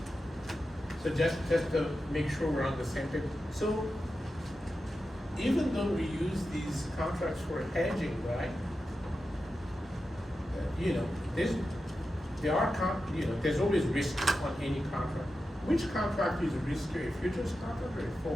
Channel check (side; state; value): both; normal; correlation 0.91